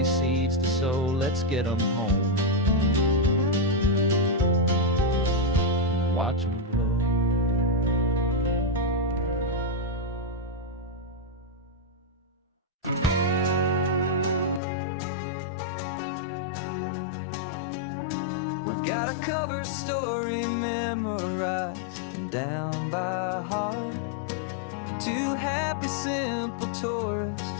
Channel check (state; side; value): drops out; right; at 14.6 s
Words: seeds to sow. Let's get them home, watch them grow. We've got a cover story memorized and down by heart. Two happy, simple